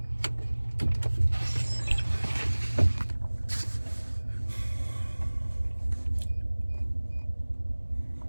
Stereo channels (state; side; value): inverted; both; correlation -1.00